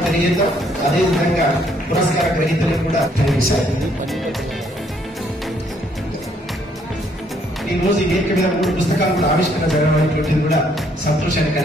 తెలియజేద్దాం. అదేవిధంగా పురస్కార గ్రహీతలకు కూడా కనిపిస్తారు. ఈ రోజు ఈ వేదిక మీద 3 పుస్తకాలు కూడా ఆవిష్కరణ జరగడం కూడా సంతోషాన్ని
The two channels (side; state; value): both; normal; correlation 0.67